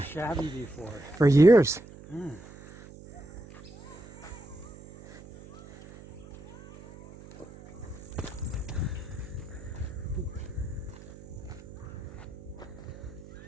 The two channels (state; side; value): noise; right; hum, 18 dB below the sound